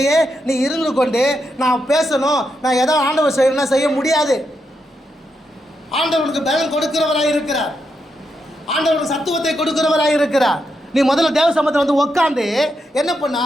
நீ இருந்து கொண்டு நான் பேசணும், நான் எதோ ஆண்டவர் செய்யணும்னா செய்ய முடியாது. ஆண்டவனுக்கு பலன் கொடுக்கிறவராக இருக்கிறார். ஆண்டவனுக்கு சத்துவத்தை கொடுக்கிறவராக இருக்கிறார். நீ முதல்ல தேவ சமூகத்தில் வந்து உட்காந்து என்ன பண்ணா,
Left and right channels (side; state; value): both; normal; correlation 0.83